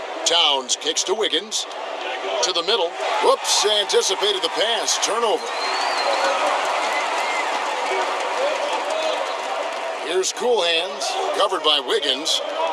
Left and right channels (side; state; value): both; identical; correlation 1.00